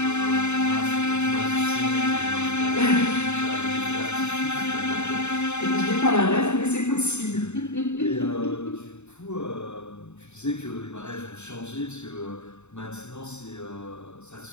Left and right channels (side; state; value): right; late; 0.82 ms